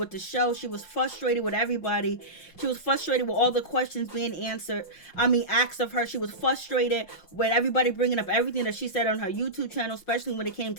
the show. She was frustrated with everybody. She was frustrated with all the questions being asked of her. She was frustrated with everybody bringing up everything that she said on her YouTube channel, especially when it came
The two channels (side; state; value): right; late; 5.6 ms